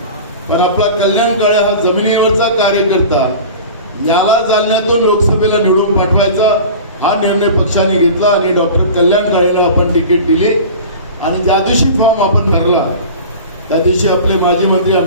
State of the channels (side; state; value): both; inverted; correlation -0.36